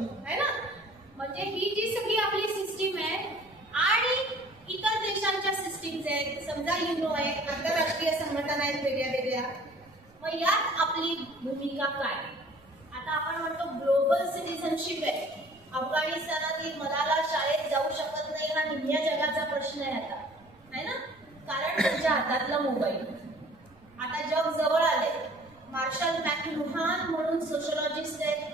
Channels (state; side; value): noise; right; rumble, 28 dB below the sound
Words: है ना. म्हणजे ही जी सगळी आपली सिस्टीम आहे आणि इतर देशांच्या सिस्टीम्स आहेत, समजा युनो आहे, आंतरराष्ट्रीय संघटना आहेत वेगळ्या वेगळ्या. मग यात आपली भूमिका काय. आता आपण म्हणतो ग्लोबल सिटिझनशिप आहे. अफगाणिस्तानातील मलाला शाळेत जाऊ शकत नाही हा निम्म्या जगाचा प्रश्न आहे आता, है ना. कारण त्यांच्या हातातला मोबाईल. आता जग जवळ आले. मार्शल मॅकलुहान म्हणून सोशलॉजिस्ट आहेत,